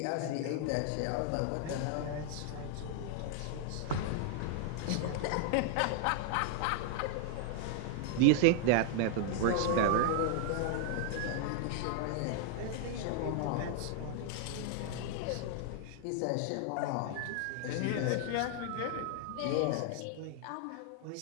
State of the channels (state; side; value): different; both; correlation -0.01